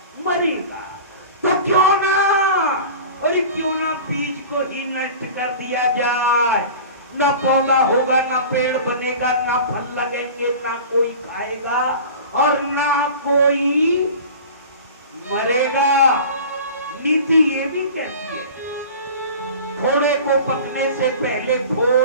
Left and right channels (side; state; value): both; inverted; correlation -0.38